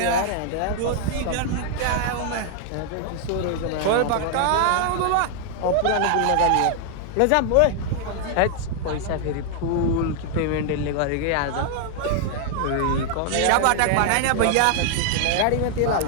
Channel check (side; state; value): both; different; correlation 0.00